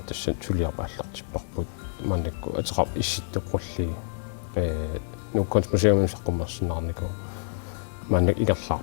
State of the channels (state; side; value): silent; right; digital silence